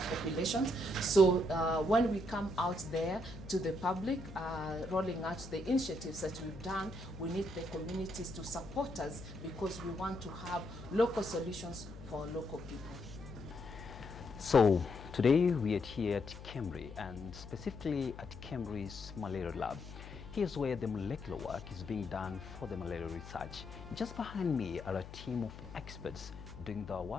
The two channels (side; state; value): left; noise; hum, 13 dB below the sound